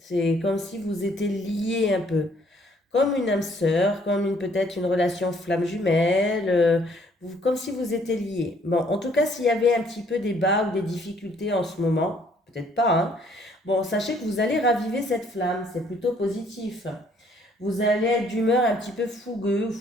comme si vous étiez liés un peu, comme une âme sœur, comme peut-être une relation flamme jumelle, comme si vous étiez liés. Bon, en tout cas, s'il y avait un petit peu des bas ou des difficultés en ce moment, peut-être pas, hein. Bon, sachez que vous allez raviver cette flamme, c'est plutôt positif. Vous allez être d'humeur un petit peu fougueux,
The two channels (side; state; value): both; normal; correlation 0.63